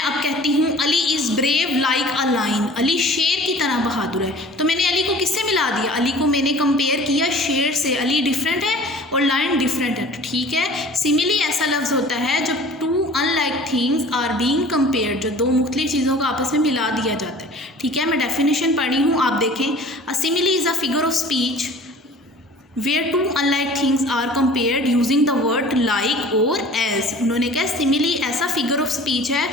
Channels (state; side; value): normal; both; correlation 0.45